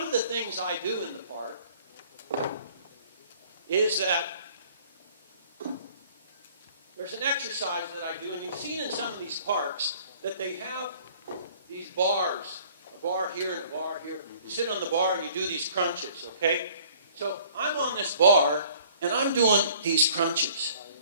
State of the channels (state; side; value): inverted; both; correlation -0.55